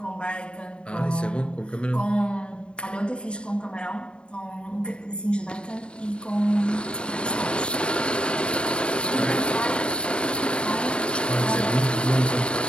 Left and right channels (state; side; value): late; right; 0.053 ms